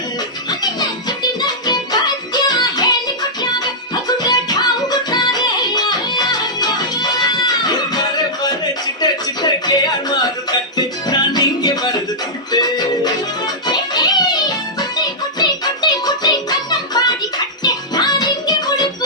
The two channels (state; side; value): normal; both; correlation -0.09